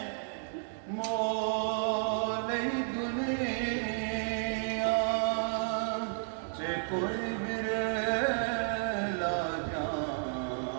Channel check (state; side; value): silent; left; digital silence